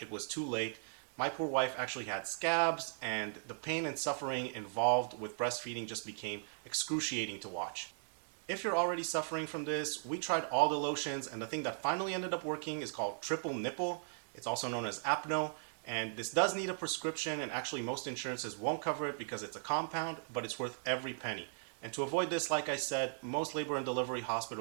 it was too late. My poor wife actually had scabs, and the pain and suffering involved with breastfeeding just became excruciating to watch. If you're already suffering from this, we tried all the lotions, and the thing that finally ended up working is called triple nipple. It's also known as Apno, and this does need a prescription, and actually most insurances won't cover it because it's a compound, but it's worth every penny. And to avoid this, like I said, most labor and delivery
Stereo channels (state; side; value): silent; left; digital silence